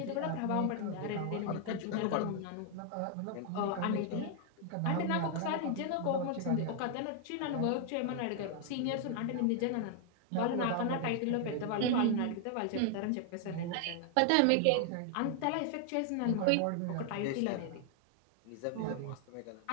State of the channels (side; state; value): both; different; correlation 0.00